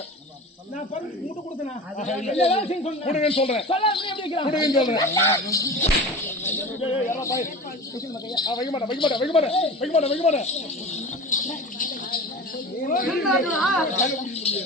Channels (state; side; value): normal; both; correlation 0.33